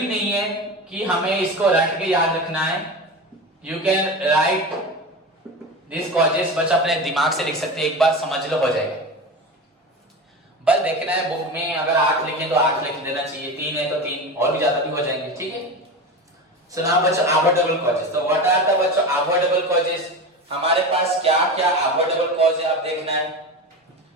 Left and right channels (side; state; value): both; normal; correlation 0.26